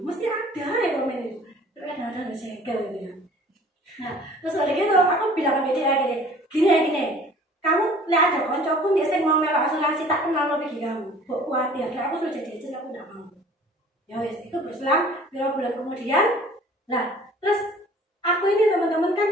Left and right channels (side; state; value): both; normal; correlation 0.50